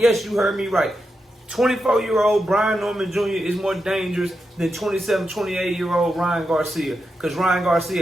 you heard me right. 24-year-old Brian Norman Jr. is more dangerous than 27, 28-year-old Ryan Garcia. Because Ryan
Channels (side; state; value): both; normal; correlation 0.87